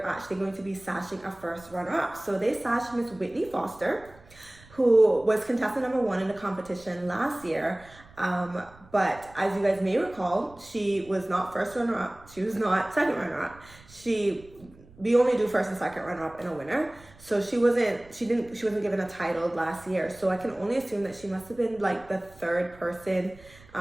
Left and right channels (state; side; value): noise; right; rumble, 24 dB below the sound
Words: actually going to be sashing a first runner-up. So they sashed Miss Whitney Foster, who was contestant number 1 in the competition last year. But as you guys may recall, she was not first runner-up. She was not second runner-up. We only do first and second runner-up and a winner. So she wasn't given a title last year. So I can only assume that she must have been like the third person,